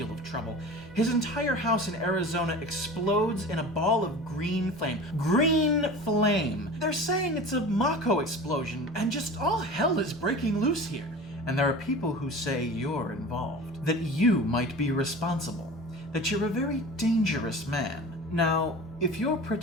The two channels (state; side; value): normal; both; correlation 0.36